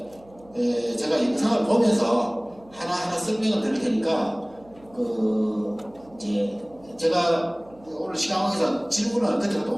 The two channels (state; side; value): noise; right; hum, 26 dB below the sound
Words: 제가 영상을 보면서 하나하나 설명을 드릴 테니까 그 이제 제가 오늘 시간에서 질문을 그때부터